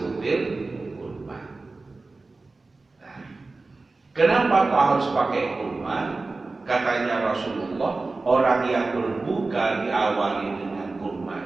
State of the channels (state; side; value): quieter; left; 3.6 dB